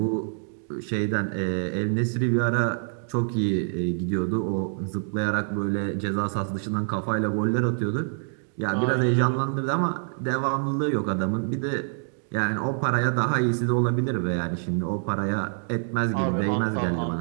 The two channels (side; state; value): left; silent; 61 dB below the other